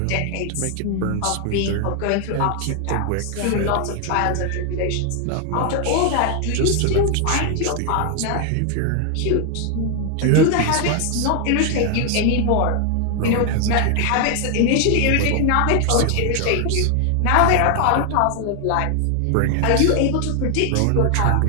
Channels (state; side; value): different; both; correlation 0.00